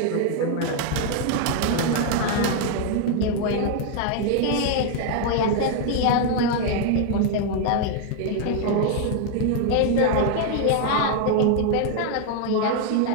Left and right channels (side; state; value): both; different; correlation 0.00